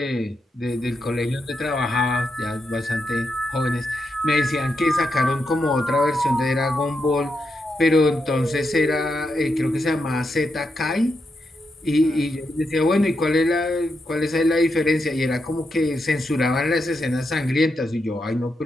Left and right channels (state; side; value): normal; both; correlation 0.84